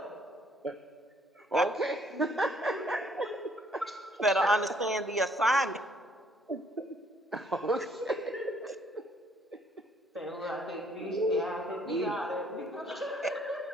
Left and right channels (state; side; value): normal; both; correlation 0.64